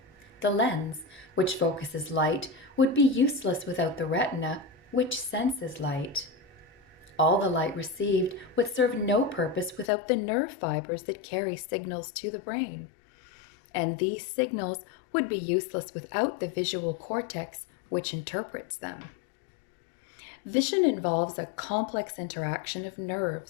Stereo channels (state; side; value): drops out; right; at 9.9 s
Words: The lens, which focuses light, would be useless without the retina, which senses light. All the light received would serve no purpose without the nerve fibers that carry signals to the brain. And these signals would be useless without the visual cortex, which interprets them. Vision involves a complex interaction of